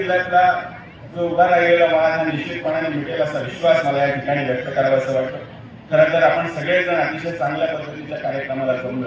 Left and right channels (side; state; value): both; identical; correlation 1.00